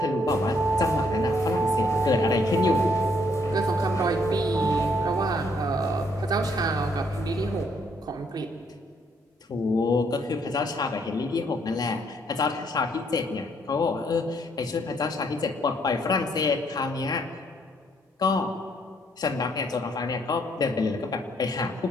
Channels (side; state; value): both; normal; correlation 0.69